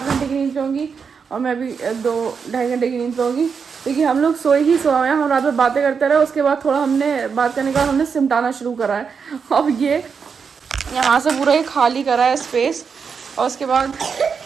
घंटे की नींद लूँगी और मैं भी 2-2.5 घंटे की नींद लूँगी, क्योंकि हम लोग सोए ही सोए हैं। हम रात में बातें करते रहे, उसके बाद थोड़ा हमने बात करने के बाद हमने सिमटाना शुरू करा है। अब ये यहाँ से पूरा ये खाली करा है स्पेस, और उसके बाद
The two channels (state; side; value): quieter; left; 6.0 dB